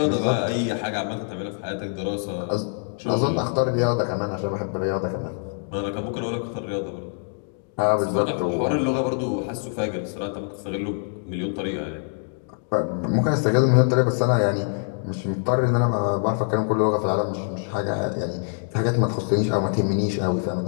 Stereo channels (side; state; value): right; silent; digital silence